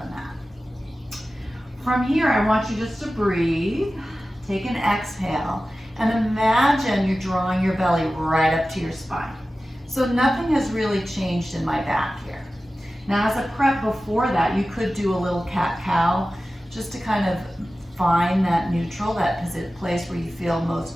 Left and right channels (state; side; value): normal; both; correlation 0.95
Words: mat. From here, I want you just to breathe. Take an exhale and imagine you're drawing your belly right up to your spine. So nothing has really changed in my back here. Now as a prep before that, you could do a little cat-cow just to kind of find that neutral, that place where you feel